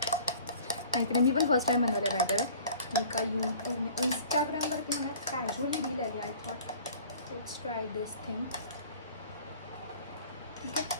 नाहीतर मी पण फर्स्ट टाईम बनवलं आहे. बाय द वे मी का इंस्टाग्रामवरती मला कॅज्युअली रील आली. I thought let's try this thing. ठीक आहे,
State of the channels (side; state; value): both; inverted; correlation -0.48